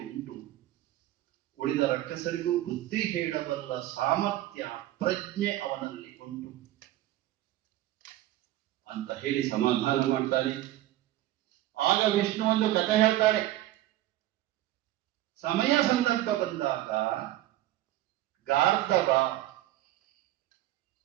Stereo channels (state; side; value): quieter; left; 14.9 dB